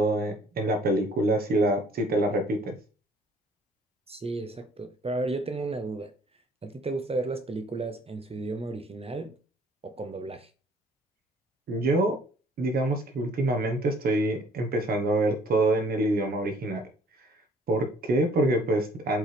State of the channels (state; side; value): normal; both; correlation 0.58